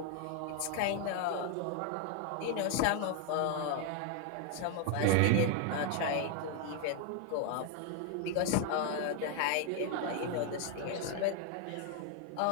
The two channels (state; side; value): different; both; correlation 0.00